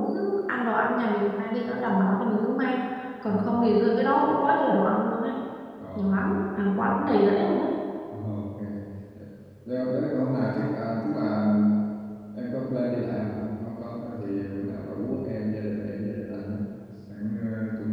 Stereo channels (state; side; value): identical; both; correlation 1.00